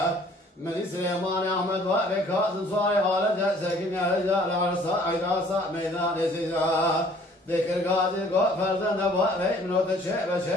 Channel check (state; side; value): normal; both; correlation 0.56